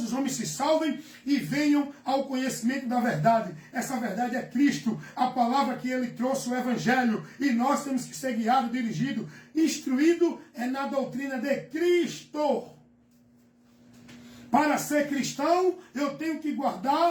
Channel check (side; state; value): both; identical; correlation 1.00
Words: os homens se salvem e venham ao conhecimento da verdade. Essa verdade é Cristo, a palavra que Ele trouxe, o Evangelho. E nós temos que ser guiados, dirigidos, instruídos na doutrina de Cristo. Para ser cristão, eu tenho que